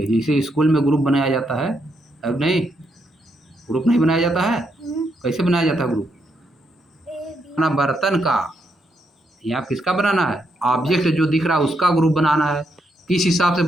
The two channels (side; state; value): both; normal; correlation 0.79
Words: जैसे स्कूल में ग्रुप बनाया जाता है, अब नहीं ग्रुप नहीं बनाया जाता है। कैसे बनाया जाता है ग्रुप, अपना बर्तन का या किसका बनाना है, ऑब्जेक्ट जो दिख रहा है उसका ग्रुप बनाना है। किस हिसाब से